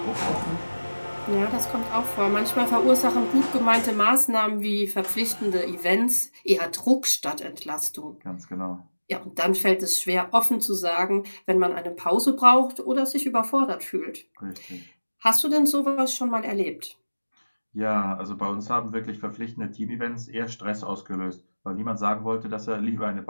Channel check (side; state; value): both; inverted; correlation -1.00